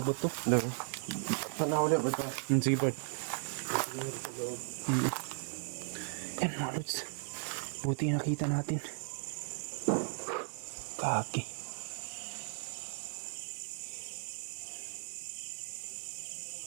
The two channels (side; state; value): left; silent; digital silence